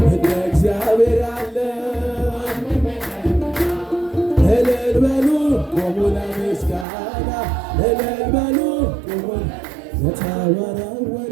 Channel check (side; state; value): left; drops out; at 6.9 s